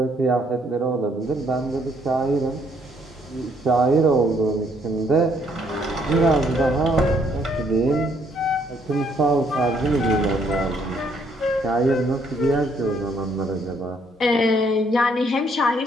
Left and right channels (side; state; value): both; normal; correlation 0.68